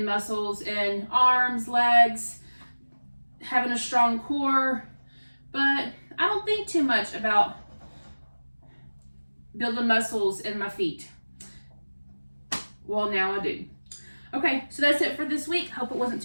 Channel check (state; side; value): inverted; both; correlation -1.00